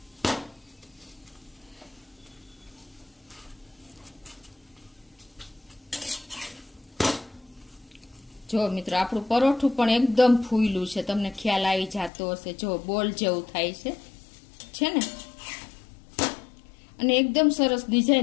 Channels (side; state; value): right; drops out; at 12.1 s